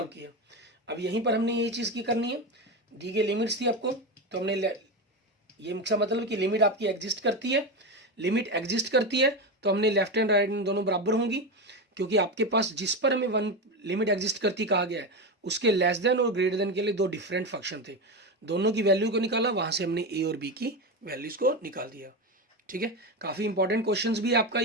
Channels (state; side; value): normal; both; correlation 0.17